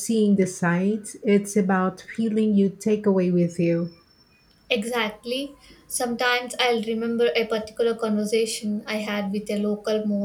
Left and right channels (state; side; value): identical; both; correlation 1.00